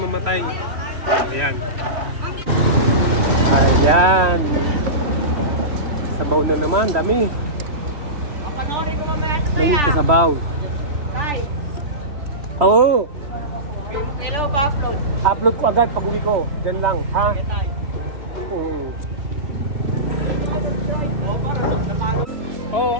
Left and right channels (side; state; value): left; late; 3.1 ms